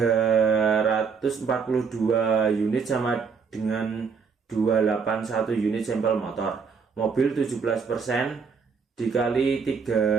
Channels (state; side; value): quieter; left; 5.6 dB